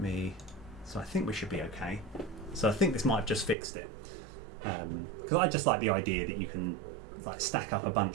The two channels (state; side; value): drops out; left; at 3.6 s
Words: so I think we should be okay. So I think this might have just fixed it, because I just like the idea that you can like stack up a